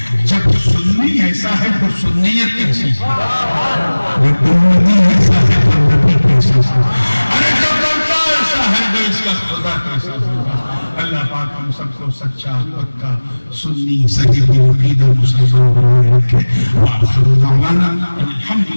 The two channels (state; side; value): inverted; both; correlation -1.00